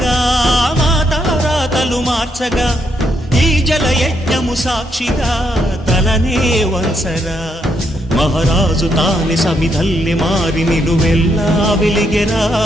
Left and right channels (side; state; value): both; normal; correlation 0.77